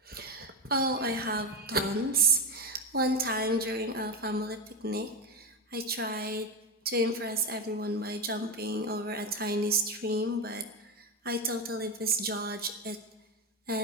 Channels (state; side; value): normal; both; correlation 0.17